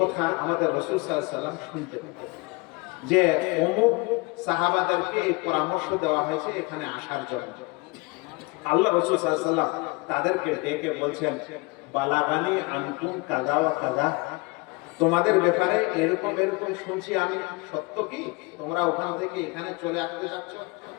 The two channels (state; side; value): quieter; right; 26.3 dB